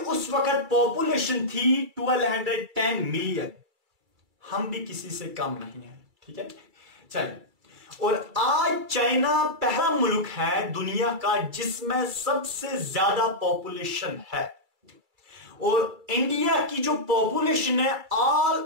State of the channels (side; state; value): left; late; 2.3 ms